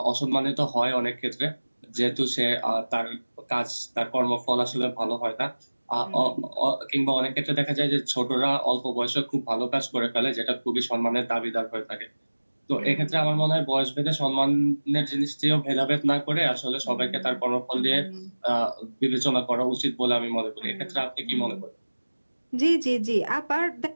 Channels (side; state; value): both; inverted; correlation -1.00